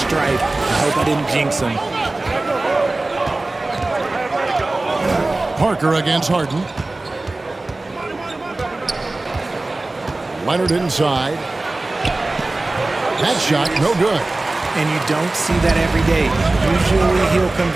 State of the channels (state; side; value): quieter; left; 3.0 dB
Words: I hope I didn't jinx him. Parker against Harden. Leonard inside. That shot, no good. And you don't see that every day. Usually he'll